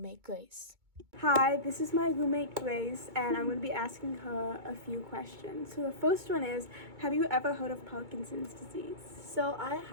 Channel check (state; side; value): late; left; 2.2 ms